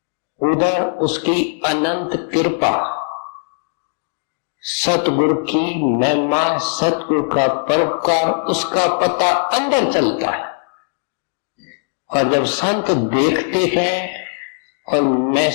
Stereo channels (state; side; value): silent; right; digital silence